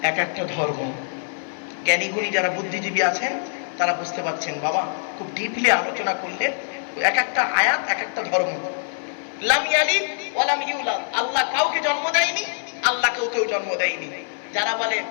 এক একটা ধর্ম। জ্ঞানীগুণী যারা বুদ্ধিজীবী আছেন তারা বুঝতে পারছেন বাবা, খুব ডিপলি আলোচনা করলে এক একটা আয়াত এক একটা ধর্ম। লাম ইয়ালিদ ওয়া লাম ইউলাদ, আল্লাহ কাউকে জন্ম দেয়নি, আল্লাহ কেউ জন্ম দেয়নি। যারা বলে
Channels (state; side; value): silent; right; digital silence